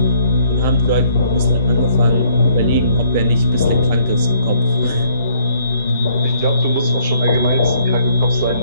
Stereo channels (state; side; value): inverted; both; correlation -0.64